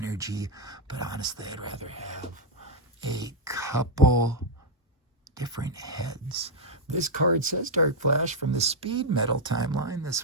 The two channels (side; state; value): both; normal; correlation -0.02